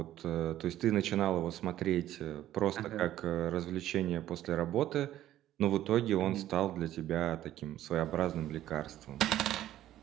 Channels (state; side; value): quieter; left; 13.0 dB